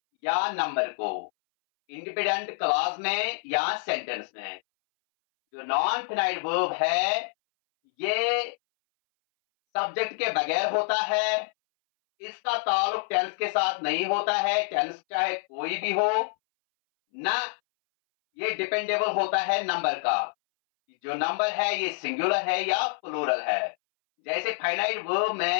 या नंबर को, इंडिपेंडेंट क्लॉज में या सेंटेंस में। जो नॉन फिनाइट वर्ब है, ये सब्जेक्ट के बगैर होता है, इसका ताल्लुक टेंस के साथ नहीं होता है, टेंस चाहे कोई भी हो, ना ये डिपेंडेबल होता है नंबर का। जो नंबर है ये सिंगुलर है या प्लूरल है। जैसे फाइनाइट वर्ब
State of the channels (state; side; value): silent; right; 60 dB below the other